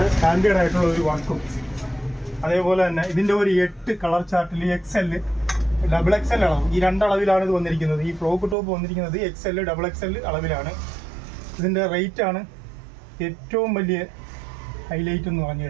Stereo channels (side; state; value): left; drops out; at 8.6 s